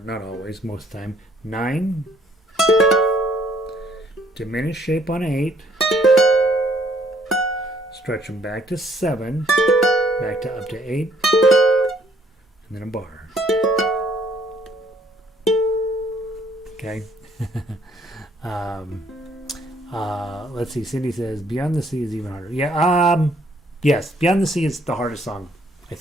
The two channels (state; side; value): normal; both; correlation 0.65